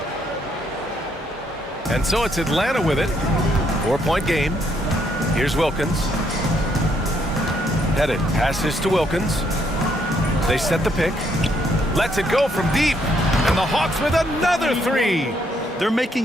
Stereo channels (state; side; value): normal; both; correlation 0.72